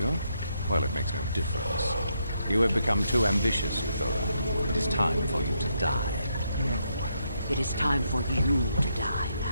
Well, it makes no difference. You have become too ambitious, Euthura. It is time for you to die. No, it is time for you to die,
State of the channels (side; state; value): both; inverted; correlation -0.78